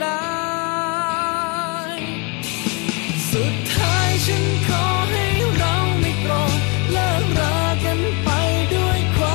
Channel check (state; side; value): quieter; right; 29.3 dB